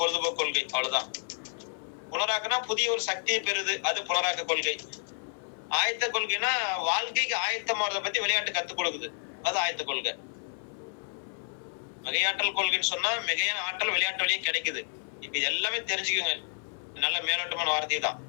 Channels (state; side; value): silent; right; 58 dB below the other